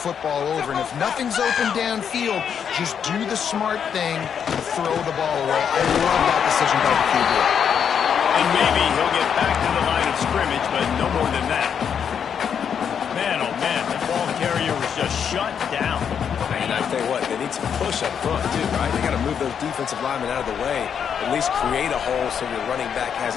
over, and if nothing's open downfield, just do the smart thing and throw the ball away. I love that decision by the QB. And maybe he'll get back to the line of scrimmage, but no more than that. Man, oh man, the ball carrier was just shut down. And I tell you what, they need some push up front too, right? They got to move those defensive linemen out of the way, at least create a hole so your running back has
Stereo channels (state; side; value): quieter; right; 7.7 dB